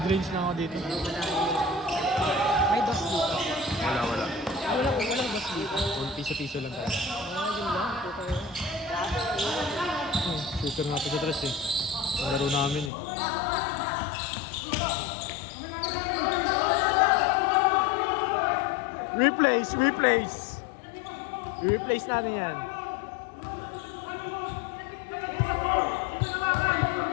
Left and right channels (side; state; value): right; drops out; at 12.9 s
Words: lang ako dito. May dos dito. Wala. Walang dos dito. Piso-piso lang tayo. Yun lang. Puta yun. Shooter natin sa tres eh. Ang laro namin eh. Replace! I-replace natin yan.